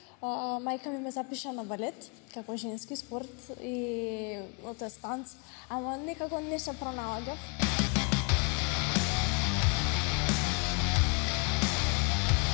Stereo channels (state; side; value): quieter; right; 34.1 dB